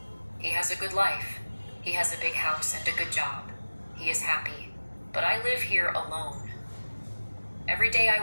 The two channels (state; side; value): inverted; both; correlation -1.00